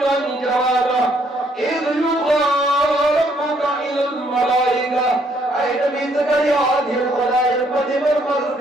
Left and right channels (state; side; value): normal; both; correlation 0.68